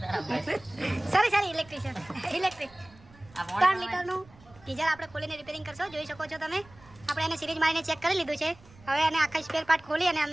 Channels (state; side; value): noise; right; rumble, 24 dB below the sound